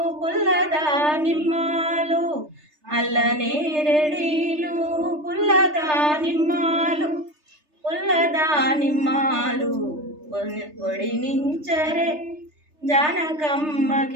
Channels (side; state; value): left; late; 3.3 ms